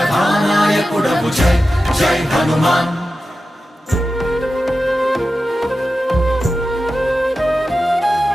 జై జై హనుమాన్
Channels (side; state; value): both; normal; correlation 0.93